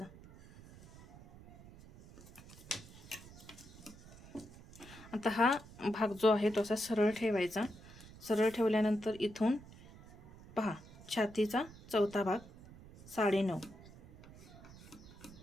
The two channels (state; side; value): noise; right; rumble, 19 dB below the sound